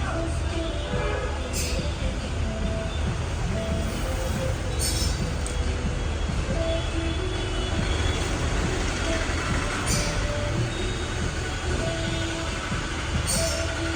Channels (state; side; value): identical; both; correlation 1.00